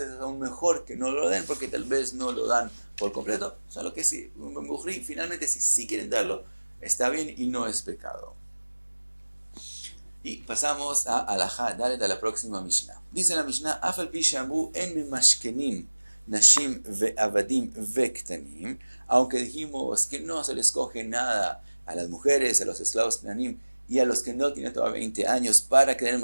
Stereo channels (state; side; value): inverted; both; correlation -1.00